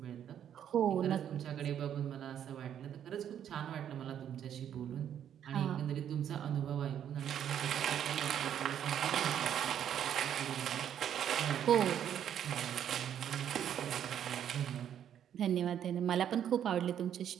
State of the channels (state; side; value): quieter; left; 9.7 dB